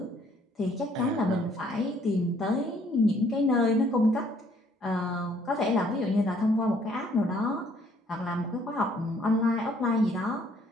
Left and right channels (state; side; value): normal; both; correlation 0.63